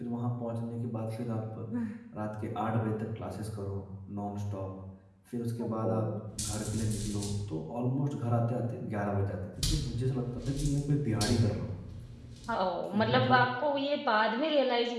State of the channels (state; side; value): identical; both; correlation 1.00